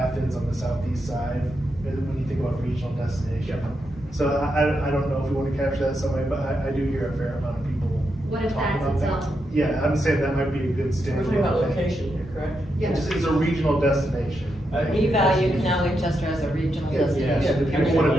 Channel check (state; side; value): normal; both; correlation 0.84